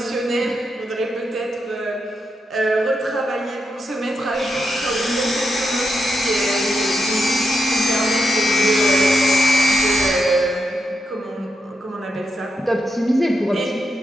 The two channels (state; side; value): normal; both; correlation 0.84